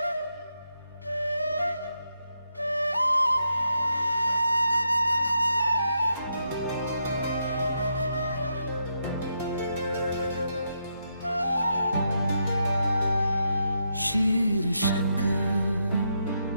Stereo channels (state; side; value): inverted; both; correlation -0.81